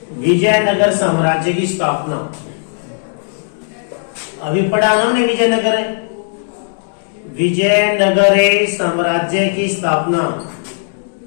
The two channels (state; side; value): silent; right; digital silence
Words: विजयनगर साम्राज्य की स्थापना अभी पढ़ा हमने। विजयनगर साम्राज्य की स्थापना